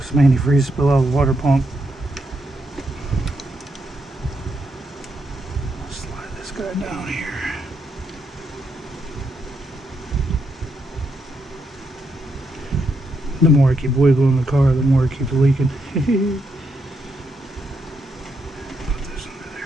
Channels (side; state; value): both; normal; correlation 0.80